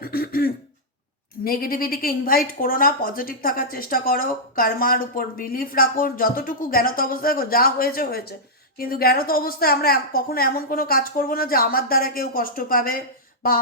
নেগেটিভিটিকে ইনভাইট করো না, পজিটিভ থাকার চেষ্টা করো, কর্মার উপর বিলিফ রাখো, যতটুকু জ্ঞানত অবস্থায় যা হয়েছে হয়েছে, কিন্তু জ্ঞানত অবস্থায় আমরা কখনো এমন কোনো কাজ করব না যে আমার দ্বারা কেউ কষ্ট পাবে বা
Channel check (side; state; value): both; normal; correlation -0.09